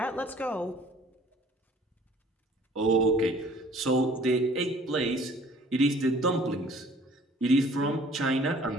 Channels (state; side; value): normal; both; correlation 0.53